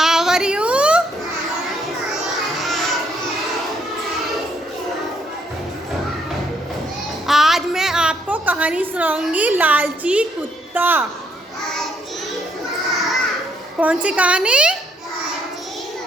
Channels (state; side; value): normal; both; correlation 0.71